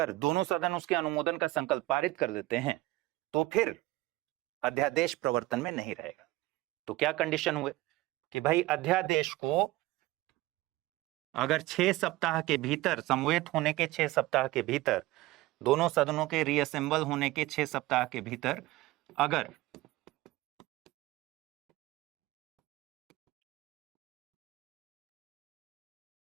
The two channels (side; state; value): left; quieter; 18.6 dB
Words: दोनों सदन उसके अनुमोदन का संकल्प पारित कर देते हैं तो फिर अध्यादेश प्रवर्तन में नहीं रहेगा। तो क्या कंडीशन हुए कि भाई अध्यादेश को अगर 6 सप्ताह के भीतर, समवेत होने के 6 सप्ताह के भीतर, दोनों सदनों के रीअसेंबल होने के 6 सप्ताह के भीतर अगर